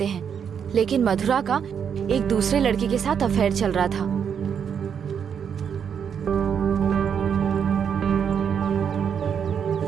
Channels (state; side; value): quieter; left; 7.6 dB